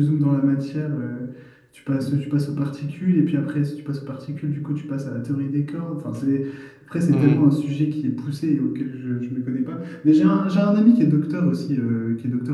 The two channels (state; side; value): identical; both; correlation 1.00